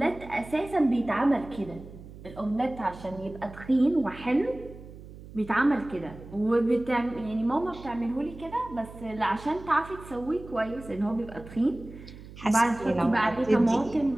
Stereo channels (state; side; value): noise; right; hum, 16 dB below the sound